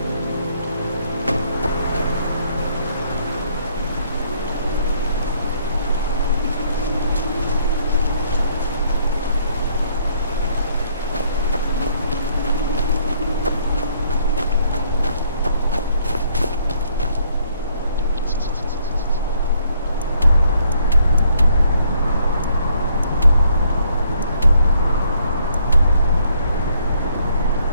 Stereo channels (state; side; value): inverted; both; correlation -0.67